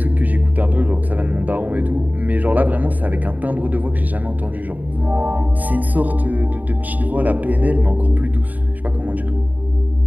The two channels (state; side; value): late; left; 0.081 ms